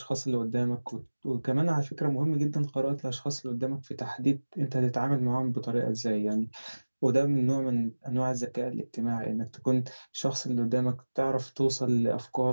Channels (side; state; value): both; inverted; correlation -1.00